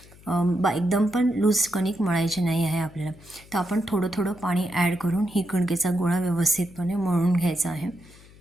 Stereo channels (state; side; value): noise; left; hum, 23 dB below the sound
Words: एकदम पण लूज कणिक मळायची नाही आहे आपल्याला. तर आपण थोडं थोडं पाणी ॲड करून ही कणकेचा गोळा व्यवस्थितपणे मळून घ्यायचा आहे.